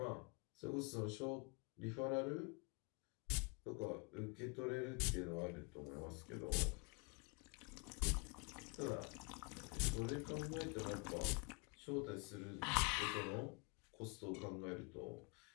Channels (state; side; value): quieter; right; 32.6 dB